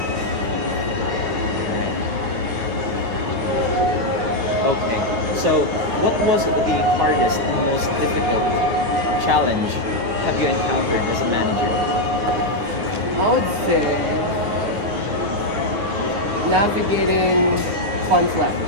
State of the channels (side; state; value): left; late; 9.4 ms